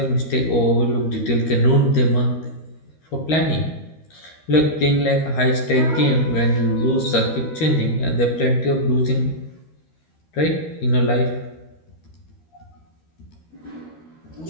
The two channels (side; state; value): right; late; 13 ms